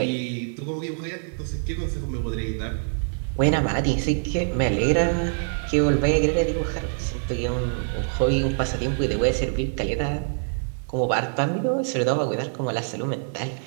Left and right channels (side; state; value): left; silent; 62 dB below the other